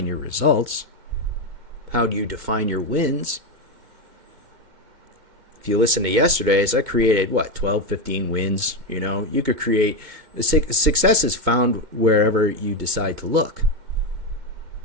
your results. How do you define your wins? If you listen to yesterday's, I created, 12, 15 wins. You could create, success is found wherever you decide to look.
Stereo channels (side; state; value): left; late; 2.1 ms